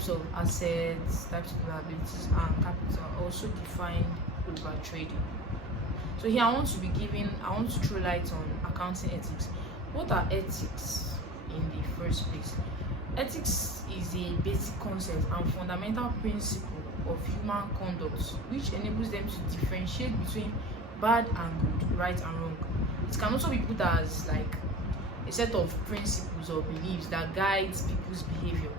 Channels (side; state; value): both; normal; correlation 0.35